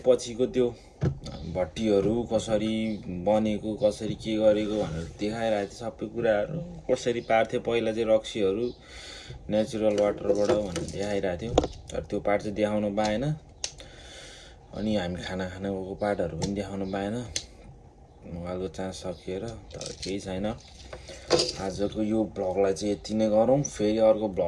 पछिको त्यो भट्टीहरू कसरी बनेको कसरी के गरेको भनेर देखाइरहेको थियो सबै कुराहरू कसरी पार्थ्यो पहिला चाहिँ रक्सीहरू नेचुरल वाटरबाट भनेर देखाइरहेको थियो तर त्यो पार्ट चाहिँ देखाउन पाएन अनि हामी खाना खान गएको पार्टहरू पनि देखाउन पाएन मोबाइलको चार्ज सकिएर तर केही छैन आजको यो ब्लगलाई चाहिँ यति नै गरौँ फेरि अर्को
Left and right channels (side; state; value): both; identical; correlation 1.00